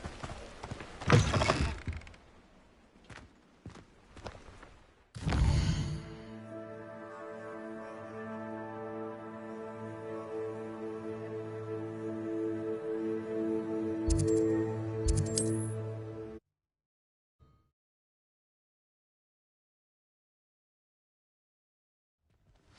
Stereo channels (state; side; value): identical; both; correlation 1.00